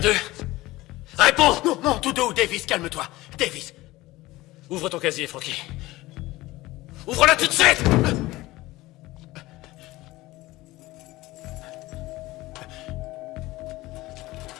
d'eux? Réponds! Non, non, tout doux, Davis, calme-toi. Davis. Ouvre ton casier, Frankie. Ouvre-la tout de suite!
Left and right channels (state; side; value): quieter; right; 18.7 dB